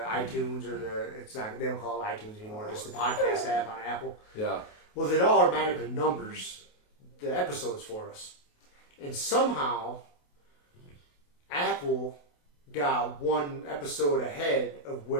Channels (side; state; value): right; late; 28 ms